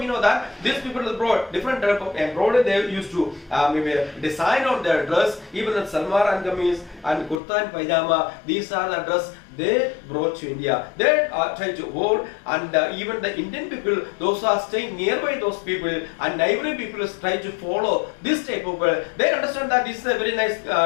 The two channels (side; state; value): right; drops out; at 7.4 s